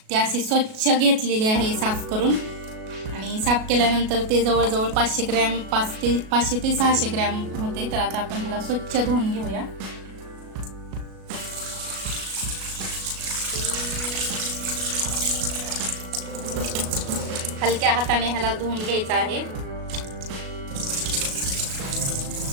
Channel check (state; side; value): late; left; 37 ms